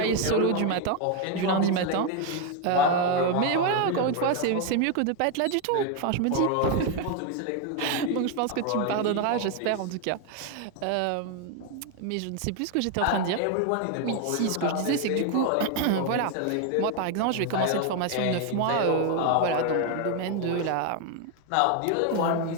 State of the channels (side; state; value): both; different; correlation 0.01